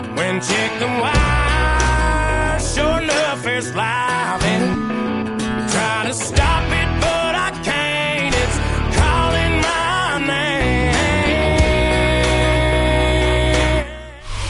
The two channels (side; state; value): both; identical; correlation 1.00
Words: when check the wire, sure enough it's live, and try to stop it but I can't. It's calling my name.